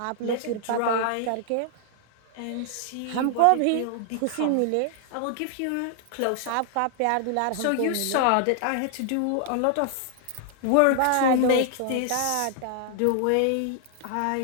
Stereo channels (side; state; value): both; different; correlation 0.00